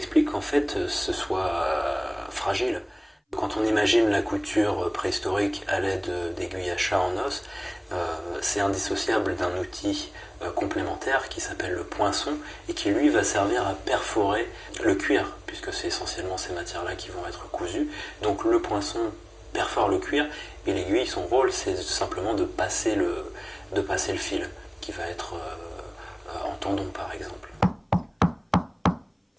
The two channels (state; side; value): identical; both; correlation 1.00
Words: qu'en fait ce soit fragile. Quand on imagine la couture préhistorique à l'aide d'aiguilles à chat en os, c'est indissociable d'un outil complémentaire qui s'appelle le poinçon, et qui lui va servir à perforer le cuir, puisque c'est essentiellement ces matières-là qui vont être cousues. Donc le poinçon perfore le cuir, et l'aiguille, son rôle, c'est simplement de passer le fil, qui va être en tendon par exemple.